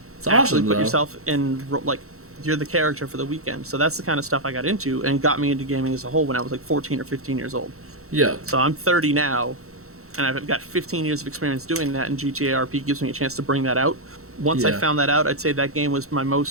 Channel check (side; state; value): left; late; 0.63 ms